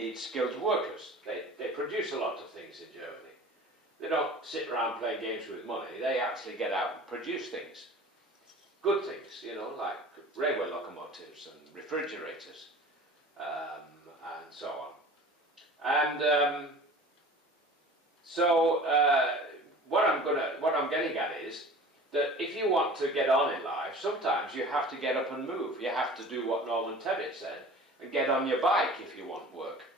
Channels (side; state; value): both; normal; correlation 0.41